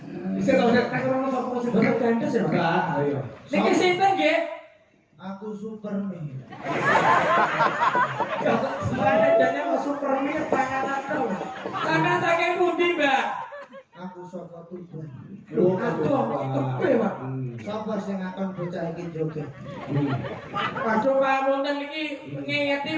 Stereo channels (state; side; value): identical; both; correlation 1.00